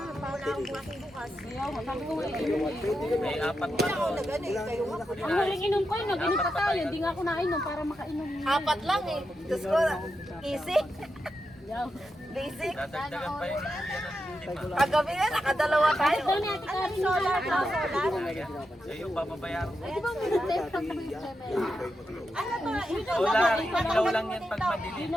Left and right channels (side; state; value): both; normal; correlation 0.87